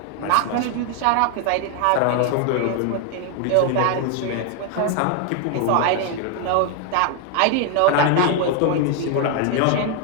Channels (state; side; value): different; both; correlation 0.01